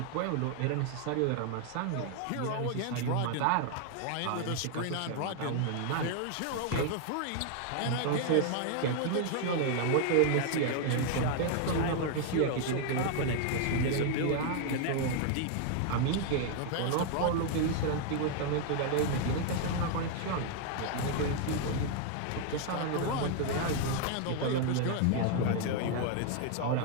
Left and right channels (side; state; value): both; different; correlation 0.00